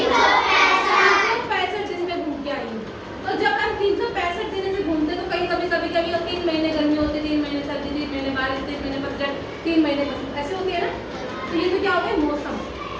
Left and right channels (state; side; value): identical; both; correlation 1.00